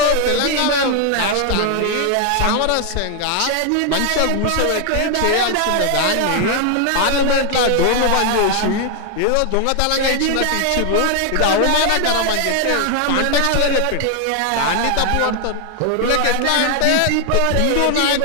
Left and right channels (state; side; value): different; both; correlation 0.00